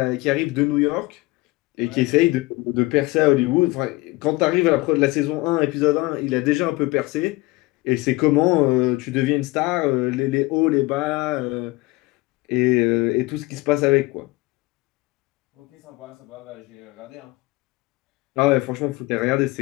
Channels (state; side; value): quieter; right; 21.6 dB